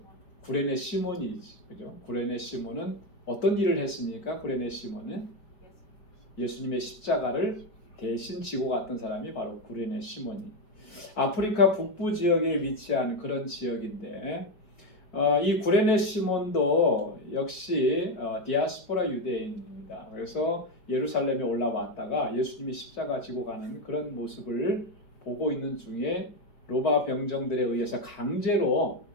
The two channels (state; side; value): late; right; 4.5 ms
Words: 구레네 시몬이, 그죠? 구레네 시몬은 어떤 일을 했습니까? 구레네 시몬은 예수님의 십자가를 대신 지고 갔던 사람이 바로 구레네 시몬이. 아프리카 북부 지역에 위치한 그런 지역인데, 이 구레네 시몬도 역시 디아스포라 유대인입니다. 그래서 예루살렘에 올라왔다가 예수님이 십자가 지고 가는 그런 모습을 보고 있는 중에 로마 병정들에 의해서 강제로